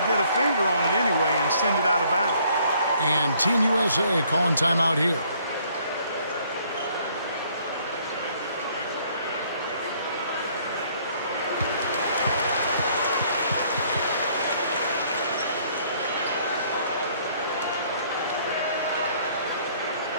get a finger on it anyway and send it out of bounds. And Team USA calling timeout here.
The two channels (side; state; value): both; inverted; correlation -0.63